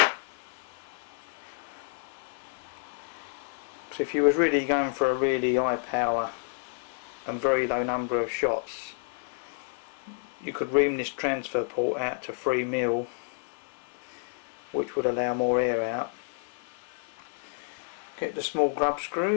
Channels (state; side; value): silent; right; 58 dB below the other